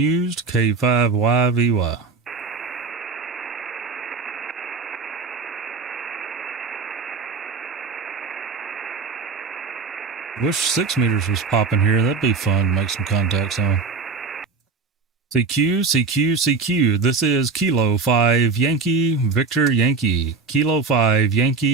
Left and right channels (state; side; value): quieter; left; 4.3 dB